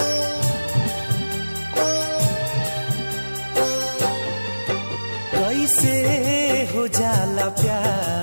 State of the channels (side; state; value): both; inverted; correlation -1.00